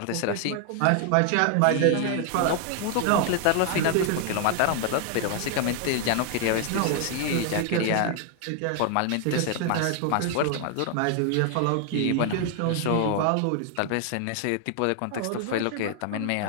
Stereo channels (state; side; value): different; both; correlation 0.00